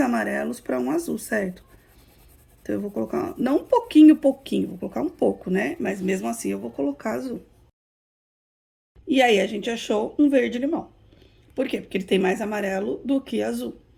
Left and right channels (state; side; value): identical; both; correlation 1.00